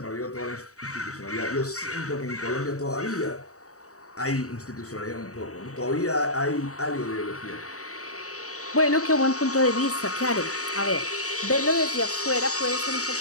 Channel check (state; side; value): late; right; 0.66 ms